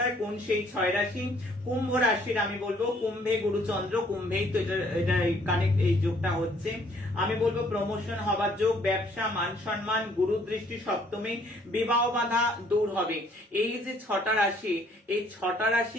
কোন সেই 6 রাশি। কুম্ভ রাশির আমি বলবো, কুম্ভে গুরুচন্দ্র, কুম্ভেই তো এটা কানেক্ট, এই যোগটা হচ্ছে। আমি বলবো প্রমোশন হবার যোগ, ব্যবসা, মান সম্মান, গুরু দৃষ্টি সপ্তমে, বিবাহ বাধা দূর হবে। এই যে 6টা রাশি, এই 6টা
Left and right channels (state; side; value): normal; both; correlation 0.63